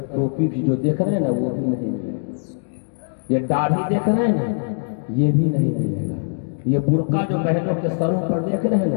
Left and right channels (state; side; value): silent; right; digital silence